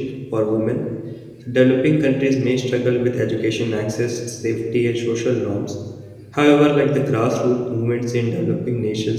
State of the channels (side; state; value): both; identical; correlation 1.00